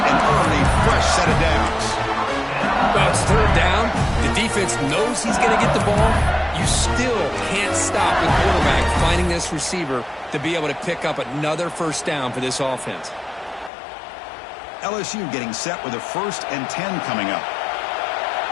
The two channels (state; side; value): drops out; right; at 13.7 s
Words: and earned a fresh set of downs. Well, it's third down. The defense knows he's going to get the ball. You still can't stop the quarterback finding this receiver to be able to pick up another first down for this offense. LSU getting set with a 1st and 10 coming up.